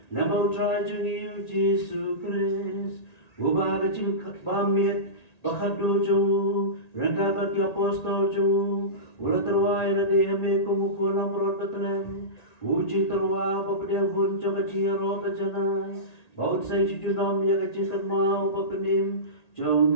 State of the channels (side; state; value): right; late; 1.9 ms